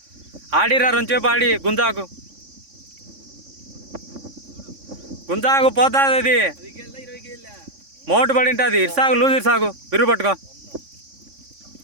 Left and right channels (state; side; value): late; left; 3.6 ms